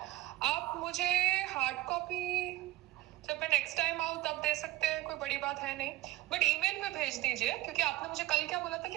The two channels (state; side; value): quieter; left; 17.2 dB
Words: आप मुझे हार्ड कॉपी जब मैं नेक्स्ट टाइम आऊँ तब दे सकते हैं, कोई बड़ी बात है नहीं। बट ईमेल पे भेज दीजिए, क्योंकि आपने मुझे कल क्या बोला था कि